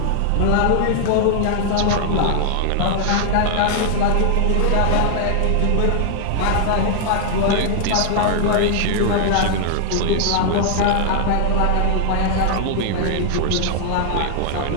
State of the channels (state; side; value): different; both; correlation 0.00